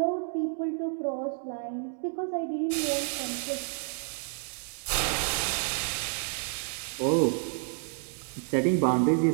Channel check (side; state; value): left; silent; 57 dB below the other